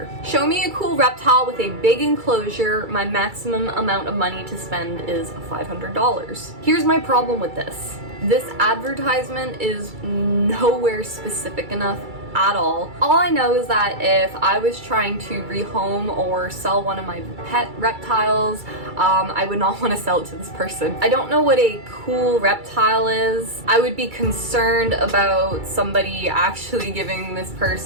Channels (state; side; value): late; left; 2.3 ms